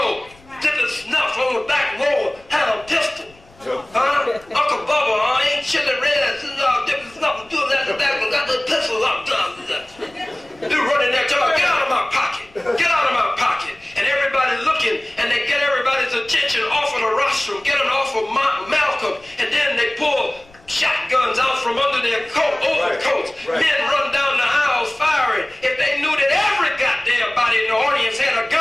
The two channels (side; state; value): left; noise; rumble, 28 dB below the sound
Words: did the snuff on the back row, had a pistol. Huh? Uncle Bubba, ain't chili red, dipping snuff, doing that, got the pistol up. They're running there, tell her, get out of my pocket. Get out of my pocket. And everybody looking, and they get everybody's attention off of the rostrum, get them off of Malcolm, and then they pull shotguns out from under their overcoats. Right. Men run down the aisles firing. If they knew that every goddamn body in the audience had a